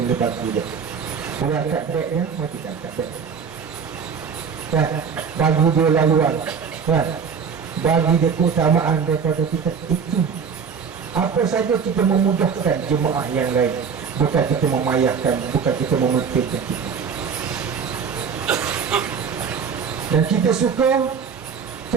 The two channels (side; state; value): left; quieter; 6.4 dB